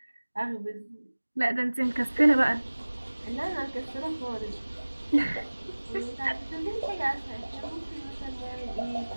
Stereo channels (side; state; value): both; inverted; correlation -1.00